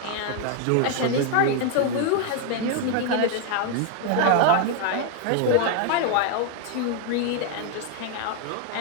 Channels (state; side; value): different; both; correlation 0.01